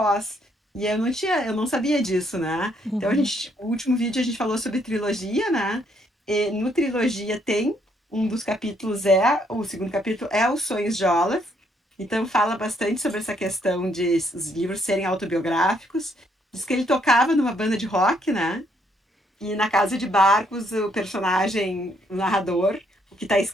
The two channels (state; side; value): normal; both; correlation 0.71